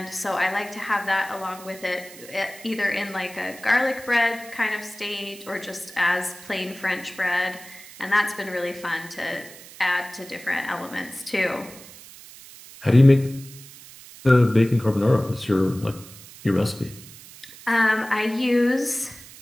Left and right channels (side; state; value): right; noise; hiss, 18 dB below the sound